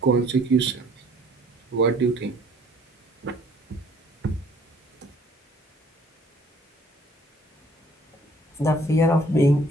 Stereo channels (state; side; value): normal; both; correlation 0.58